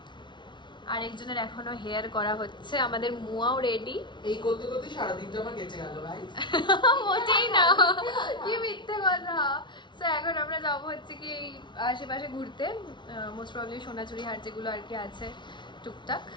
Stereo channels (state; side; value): late; right; 0.23 ms